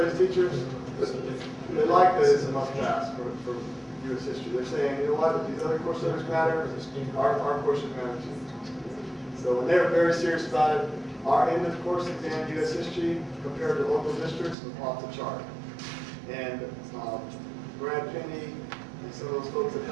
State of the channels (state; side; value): drops out; left; at 14.6 s